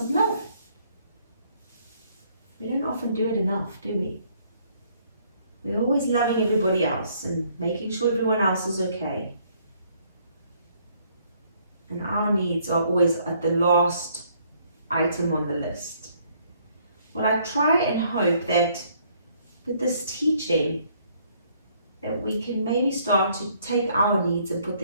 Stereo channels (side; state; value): both; inverted; correlation -0.65